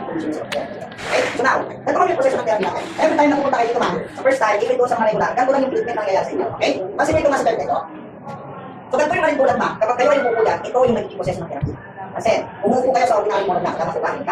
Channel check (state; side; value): identical; both; correlation 1.00